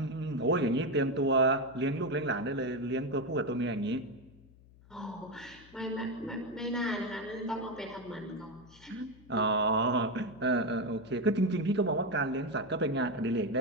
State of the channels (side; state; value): left; noise; hum, 24 dB below the sound